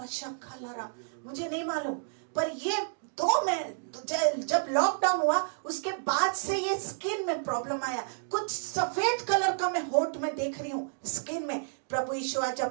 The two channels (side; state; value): left; silent; digital silence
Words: मुझे नहीं मालूम, पर ये जब लॉकडाउन हुआ उसके बाद से ये स्किन में प्रॉब्लम आया। कुछ सफेद कलर का मैं होठ में देख रही हूँ स्किन में। प्रभु यीशु आज